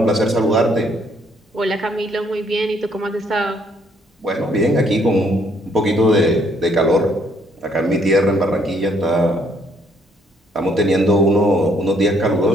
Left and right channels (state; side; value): normal; both; correlation 0.67